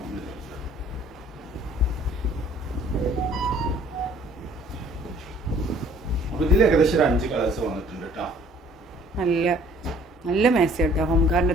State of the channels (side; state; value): both; normal; correlation 0.56